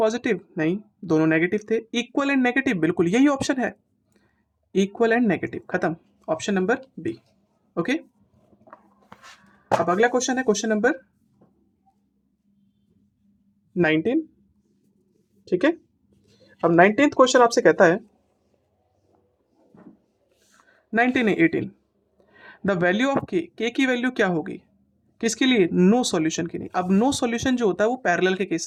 नहीं, दोनों नेगेटिव थे। इक्वल एंड नेगेटिव, बिल्कुल यही ऑप्शन है, इक्वल एंड नेगेटिव, खत्म, ऑप्शन नंबर बी। ओके, अब अगला क्वेश्चन है क्वेश्चन नंबर 19, ठीक है। अब 19th क्वेश्चन आपसे कहता है 19 है 18, द वैल्यू ऑफ के की वैल्यू क्या होगी, किसके लिए, नो सॉल्यूशन के लिए। अब नो सॉल्यूशन जो होता है वो पैरेलल के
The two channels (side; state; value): both; identical; correlation 1.00